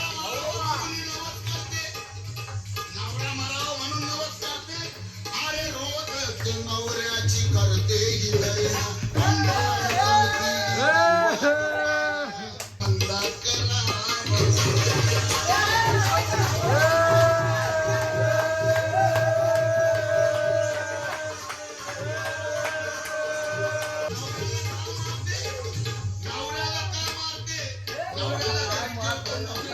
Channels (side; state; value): both; identical; correlation 1.00